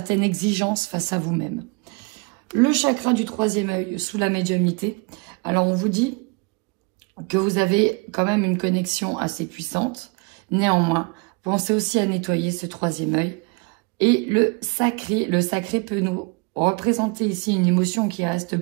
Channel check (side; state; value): left; quieter; 29.3 dB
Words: exigence face à vous-même. Le chakra du troisième œil sous la médiumnité. Alors, on vous dit que vous avez quand même une connexion assez puissante. Néanmoins, pensez aussi à nettoyer ce troisième œil. Et le sacré peut nous représenter ici une émotion qui reste